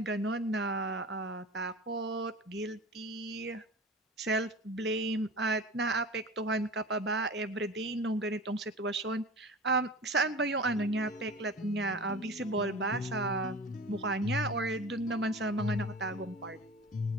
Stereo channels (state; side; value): normal; both; correlation 0.36